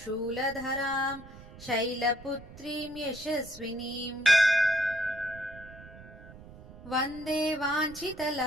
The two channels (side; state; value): right; noise; rumble, 18 dB below the sound